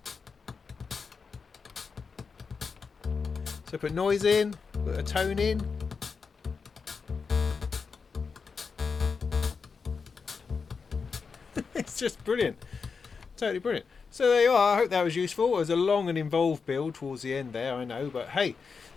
So put noise in, put a tone in. It's just brilliant. Totally brilliant. So there you are. I hope that was useful. It was a long and involved build towards the end there, I know, but hey,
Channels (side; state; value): right; quieter; 5.3 dB